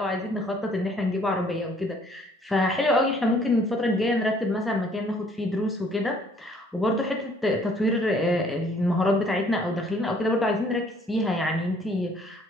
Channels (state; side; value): normal; both; correlation 0.60